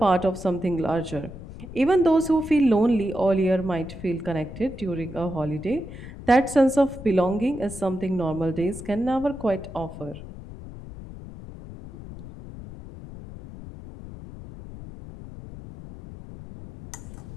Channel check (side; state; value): left; noise; rumble, 13 dB below the sound